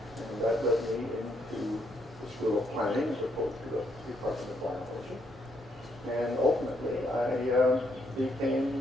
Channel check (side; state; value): both; normal; correlation 0.74